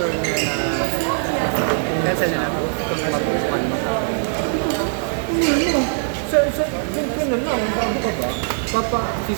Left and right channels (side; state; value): left; silent; digital silence